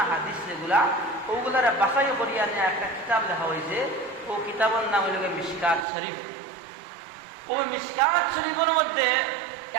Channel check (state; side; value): drops out; left; at 5.9 s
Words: হাদিস যেগুলা, ওগুলার বাছাই করিয়া নিয়ে একটা কিতাব লেখা হয়েছে। ও কিতাবের নাম হইল মিশকাত শরীফ। ও মিশকাত শরীফের মধ্যে